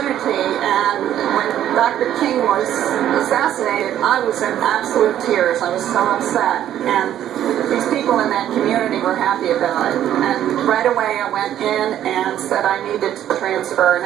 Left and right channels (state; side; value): quieter; left; 11.3 dB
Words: and when Dr. King was assassinated, I was in absolute tears. I was so upset, and these people in that community were happy about it, and right away I went in and said I needed to transfer, and